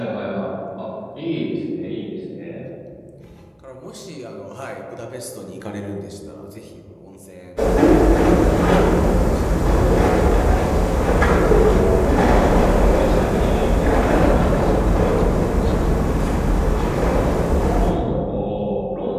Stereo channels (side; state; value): both; identical; correlation 1.00